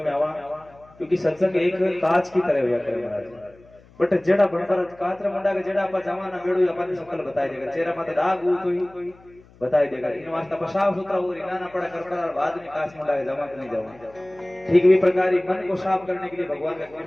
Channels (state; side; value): noise; left; hum, 26 dB below the sound